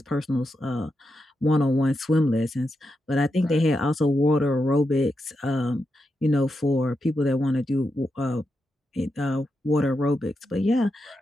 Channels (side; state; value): both; normal; correlation 0.86